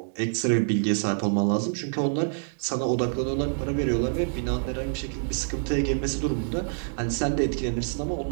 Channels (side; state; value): left; silent; digital silence